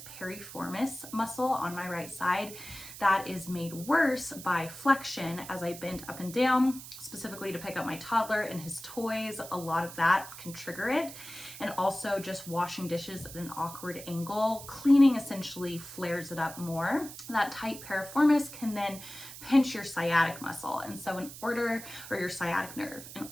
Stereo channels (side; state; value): right; noise; hiss, 13 dB below the sound